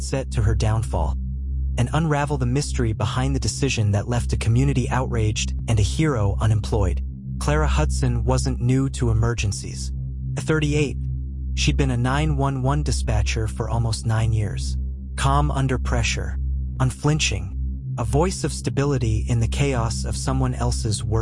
to her downfall, and unravel the mystery behind the decision that left a community outraged and a hero unemployed. Clara Hudson wasn't new to emergencies. At 38, she'd been a 911 dispatcher for almost 9 years. Calm under pressure, unflinching, a voice of stability in the chaos of someone else's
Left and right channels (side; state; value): both; identical; correlation 1.00